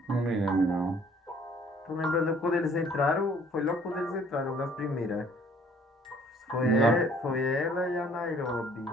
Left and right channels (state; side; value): normal; both; correlation 0.58